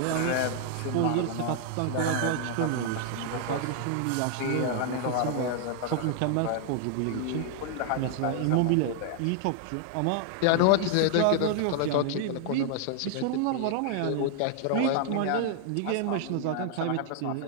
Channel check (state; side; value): different; both; correlation 0.00